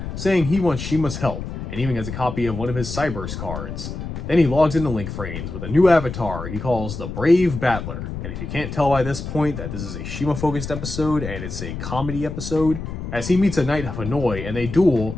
saying he wants Shima's help, and even gets a copy of one of his Cyberse cards. Then he logs into Link Vrains with a new avatar he calls the Brave Battler. And if you can't tell by this point that this is a Shima-focused episode and it's a comedy episode, as he meets a Knight of Hanoi and they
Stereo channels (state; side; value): noise; left; rumble, 7 dB below the sound